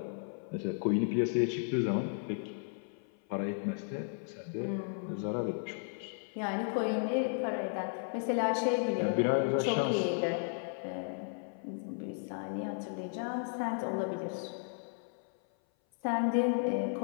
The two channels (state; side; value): silent; right; 55 dB below the other